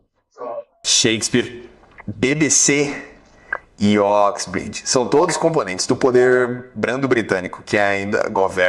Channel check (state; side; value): identical; both; correlation 1.00